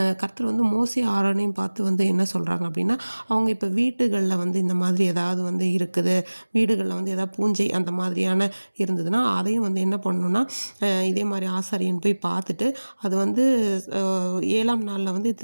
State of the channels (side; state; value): both; inverted; correlation -1.00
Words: கர்த்தர் மோசே ஆரோனையும் பார்த்து என்ன சொல்கிறாங்க அப்படின்னா, அவங்க இப்போ வீட்டுகளில் இந்த மாதிரி ஏதாவது இருக்குது, வீடுகளில் ஏதாவது பூஞ்சை அந்த மாதிரியான இருந்ததுன்னா அதையும் என்ன பண்ணணும்னா, இதே மாதிரி ஆசாரியன் போய் பார்த்துட்டு அது 7ஆம் நாளில்